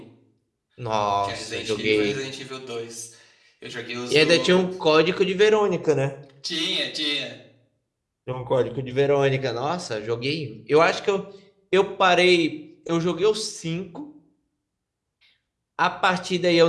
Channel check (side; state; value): both; identical; correlation 1.00